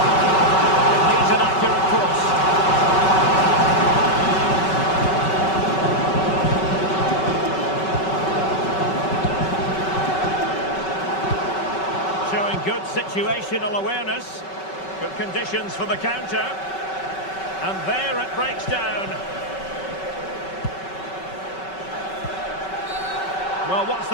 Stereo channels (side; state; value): right; late; 5.3 ms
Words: It needs an accurate cross. Showing good situational awareness. Good conditions for the counter. And there it breaks down. Well, what's